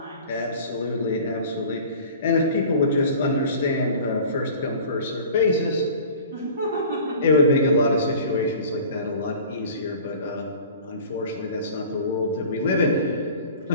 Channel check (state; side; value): inverted; both; correlation -0.43